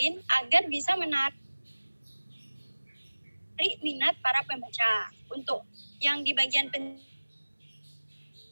agar bisa menarik minat para pembaca. Untuk yang di bagian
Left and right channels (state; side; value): inverted; both; correlation -1.00